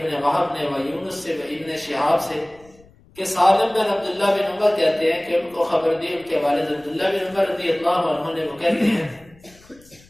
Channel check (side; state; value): left; noise; rumble, 27 dB below the sound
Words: وہب نے، و یونس سے، و ابن شہاب سے، کہ سالم بن عبداللہ بن عمر کہتے ہیں کہ ان کو خبر دی ان کے والد عبداللہ بن عمر رضی اللہ عنہ نے، وہ کہتے ہیں